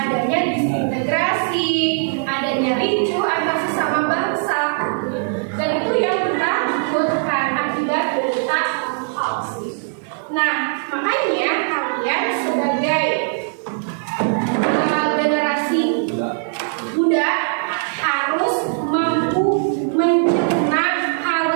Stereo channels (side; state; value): left; silent; digital silence